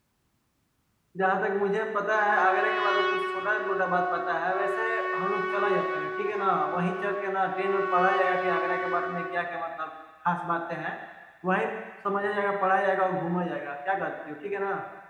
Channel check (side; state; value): both; identical; correlation 1.00